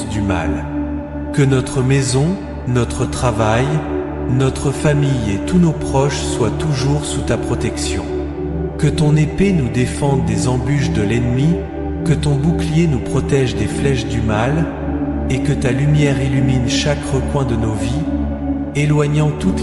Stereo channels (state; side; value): identical; both; correlation 1.00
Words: du mal. Que notre maison, notre travail, notre famille et tous nos proches soient toujours sous ta protection. Que ton épée nous défende des embûches de l'ennemi, que ton bouclier nous protège des flèches du mal, et que ta lumière illumine chaque recoin de nos vies, éloignant